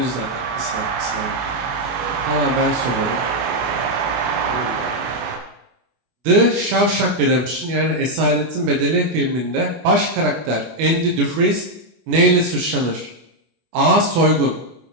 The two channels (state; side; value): late; left; 24 ms